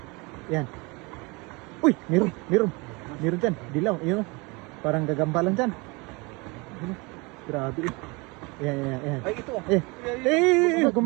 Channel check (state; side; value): quieter; left; 27.1 dB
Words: Yan. Uy, meron dyan. Dilaw. Yun o. Parang gagambalan dyan. Yun o. Grabe o. Yan. Ay, ito.